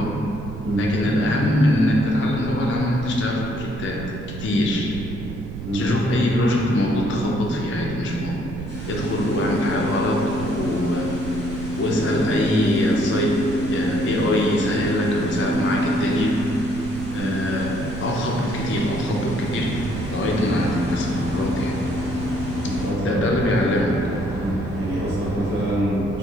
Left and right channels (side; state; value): right; noise; rumble, 9 dB below the sound